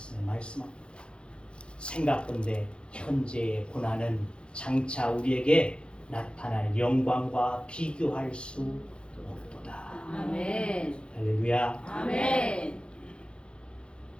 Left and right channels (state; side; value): late; right; 0.055 ms